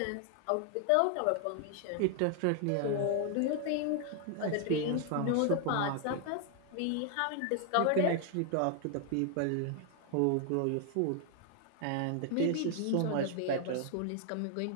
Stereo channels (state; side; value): different; both; correlation 0.00